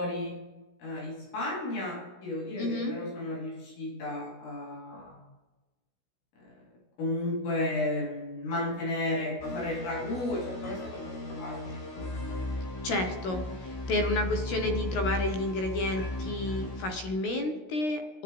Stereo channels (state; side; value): late; right; 16 ms